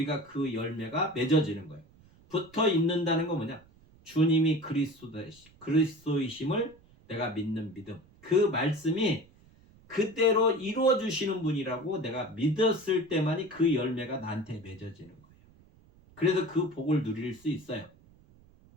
그 열매가 맺어지는 거예요. 붙어 있는다는 건 뭐냐? 주님이 그리스도이심을 내가 믿는 믿음. 그 말씀이 그대로 이루어 주시는 분이라고 내가 믿었을 때만이 그 열매가 나한테 맺어지는 거예요. 그래서 그 복을 누릴 수 있어요.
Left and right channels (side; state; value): right; noise; rumble, 27 dB below the sound